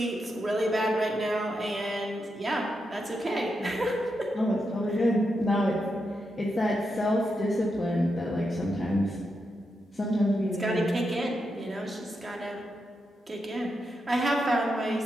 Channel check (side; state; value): both; normal; correlation 0.85